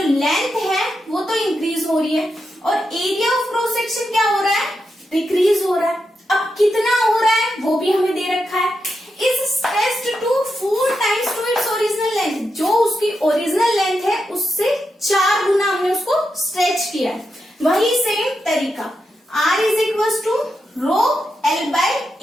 लेंथ है वो तो इंक्रीज हो रही है, और एरिया ऑफ क्रॉस सेक्शन क्या हो रहा है, डिक्रीज हो रहा है। अब कितना हो रहा है वो भी हमें दे रखा है, is stressed to 4 times to its original length, जो उसकी ओरिजिनल लेंथ है उससे 4 गुना हमने उसको स्ट्रेच किया है। वही सेम तरीका, R is equal to rho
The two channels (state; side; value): normal; both; correlation 0.86